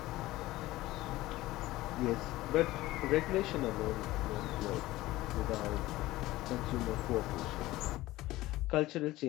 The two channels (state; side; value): quieter; right; 17.4 dB